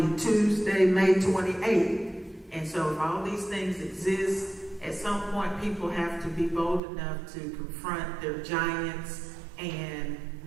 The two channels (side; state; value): left; drops out; at 6.8 s